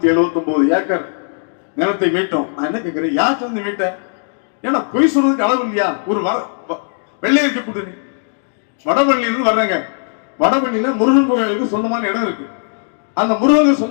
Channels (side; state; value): right; silent; digital silence